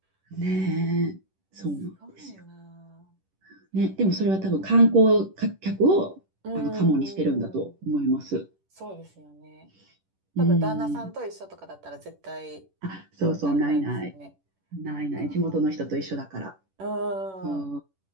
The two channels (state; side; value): late; left; 10 ms